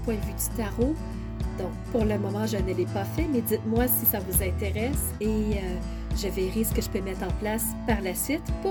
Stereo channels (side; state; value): both; identical; correlation 1.00